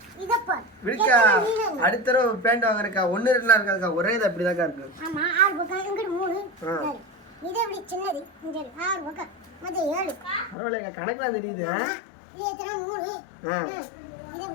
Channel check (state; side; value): drops out; right; at 10.6 s